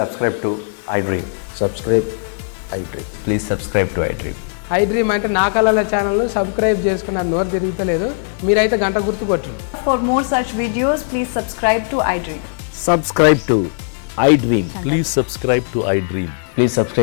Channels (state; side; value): silent; right; 56 dB below the other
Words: to iDream. Subscribe iDream. Please subscribe to iDream. I dream అంటే నా కళల channel subscribe చేసుకున్న నోరు తిరుగుతలేదు, మీరైతే గంట గుర్తు కొట్టండి. For more such videos, please subscribe to iDream. Subscribe to iDream. Please subscribe to iDream. Please